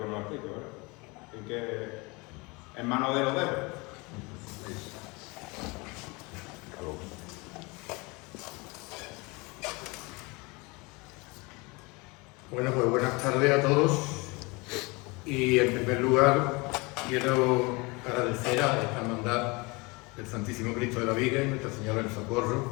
nos explique, ¿verdad? Así que, en manos de los dedos. Bueno, pues buenas tardes a todos, y en primer lugar quiero agradecer a esta hermandad del Santísimo Cristo de la Viga y Nuestra Señora del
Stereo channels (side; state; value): right; quieter; 26.4 dB